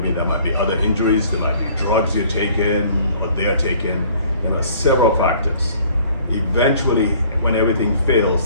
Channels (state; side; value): inverted; both; correlation -0.54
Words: there might be other injuries, there might be drugs you're taking or they're taking. There are several factors. Eventually, when everything